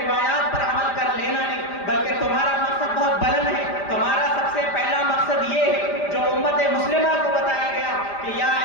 پر عمل کر لینا نہیں، بلکہ تمہارا مقصد بہت بلند ہے۔ تمہارا سب سے پہلا مقصد یہ ہے جو امت مسلمہ کو بتایا گیا کہ یا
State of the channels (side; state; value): right; late; 5.0 ms